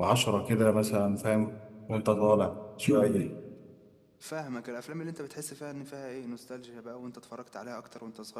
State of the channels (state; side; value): identical; both; correlation 1.00